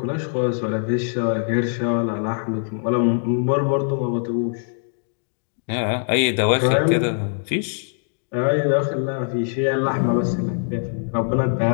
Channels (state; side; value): silent; right; digital silence